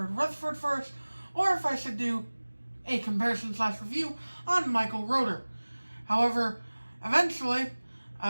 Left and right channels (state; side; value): inverted; both; correlation -1.00